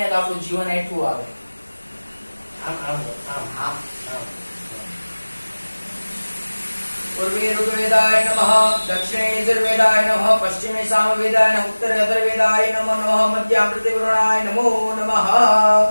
તો આપણું જીવન હેઠું આવે આમ આમ આમ આમ पूर्वे ऋग्वेदाय नमः दक्षिणे यजुर्वेदाय नमः पश्चिमे सामवेदाय नमः उत्तरे अथर्ववेदाय नमो नमः मध्यामृते वरुणाय नमो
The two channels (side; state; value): both; inverted; correlation -1.00